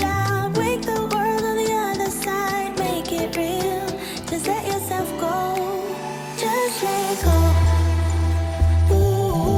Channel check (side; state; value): both; identical; correlation 1.00